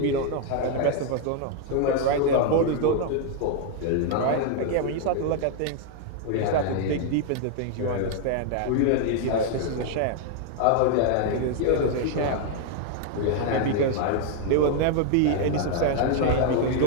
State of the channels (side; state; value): both; different; correlation 0.00